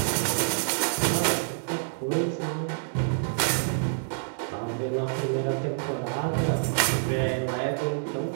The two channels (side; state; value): left; silent; digital silence